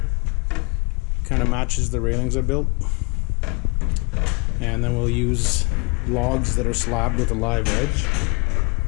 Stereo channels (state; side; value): quieter; right; 30.6 dB